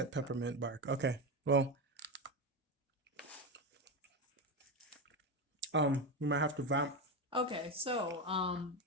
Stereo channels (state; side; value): normal; both; correlation 0.15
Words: peppermint bark. Okay. Well, we might have to vamp. Okay, so